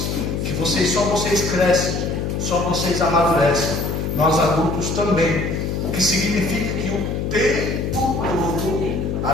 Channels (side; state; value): left; noise; hum, 2 dB below the sound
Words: que vocês crescem, só vocês amadurecem. Nós adultos também. O que significa que o tempo todo,